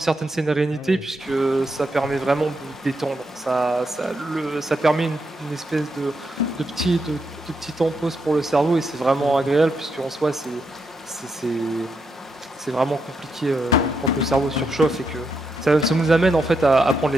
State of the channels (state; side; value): normal; both; correlation 0.82